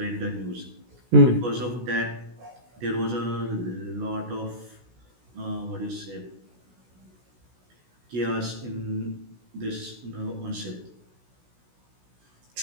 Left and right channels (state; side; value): late; left; 16 ms